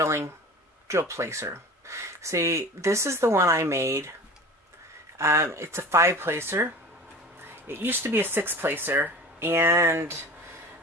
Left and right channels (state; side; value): normal; both; correlation 0.37